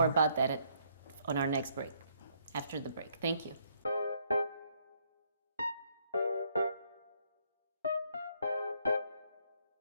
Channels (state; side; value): inverted; both; correlation -0.69